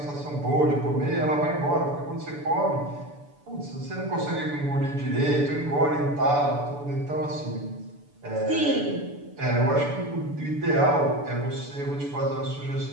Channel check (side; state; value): left; late; 6.9 ms